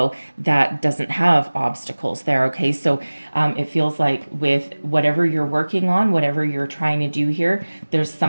that doesn't have obstacles there, okay? So it feels like with whatever you're working on, whatever you're trying to do here, there's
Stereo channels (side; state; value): both; inverted; correlation -1.00